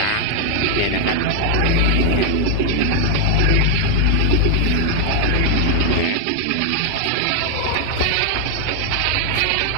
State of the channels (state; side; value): different; both; correlation 0.00